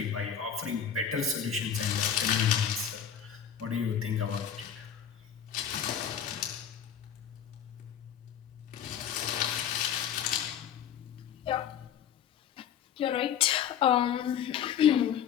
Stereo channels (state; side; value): quieter; right; 8.7 dB